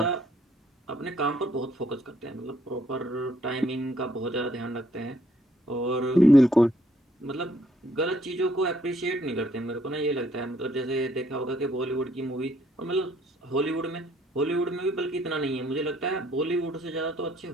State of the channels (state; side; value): normal; both; correlation 0.67